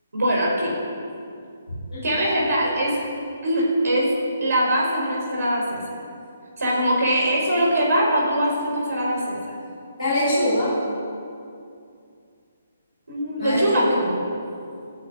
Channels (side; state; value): both; inverted; correlation -0.73